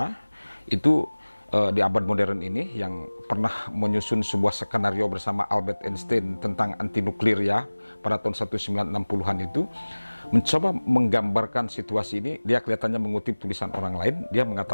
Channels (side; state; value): both; inverted; correlation -1.00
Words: itu di abad modern ini, yang pernah menyusun sebuah skenario bersama Albert Einstein tentang anti nuklir ya pada tahun 1960-an itu, mencoba menggambarkan situasi ini. Dia kelihatannya mengutip tulisan orang lain. Dia